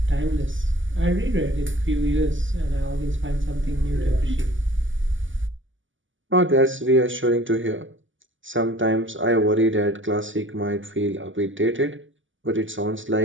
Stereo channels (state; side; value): late; left; 0.56 ms